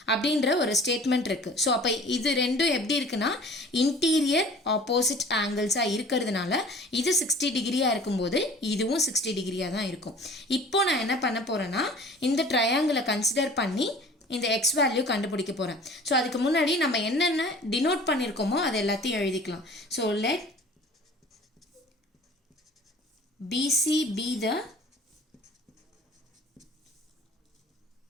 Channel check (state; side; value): normal; both; correlation 0.46